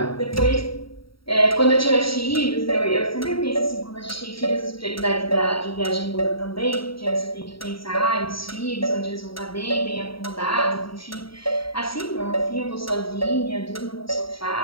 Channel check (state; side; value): late; right; 0.75 ms